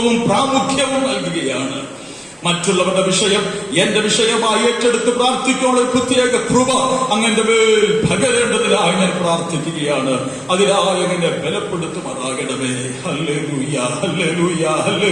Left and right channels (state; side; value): identical; both; correlation 1.00